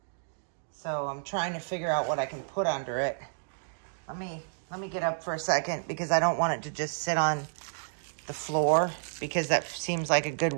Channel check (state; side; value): silent; left; digital silence